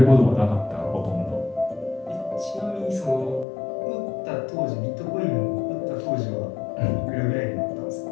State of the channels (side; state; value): right; drops out; at 3.5 s